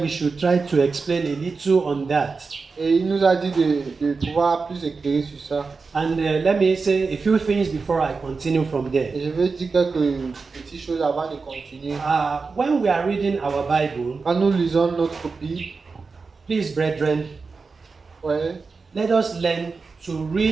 we should try to explain a little on that. Et il nous a dit de pouvoir plus éclairer sur ça. And let me say a few things before I continue from there. Et je veux dire quelques petites choses avant de continuer. When we are reading our Bible, Quand nous lisons notre Bible, please, brethren, ouais, let us learn to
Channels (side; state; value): left; quieter; 4.5 dB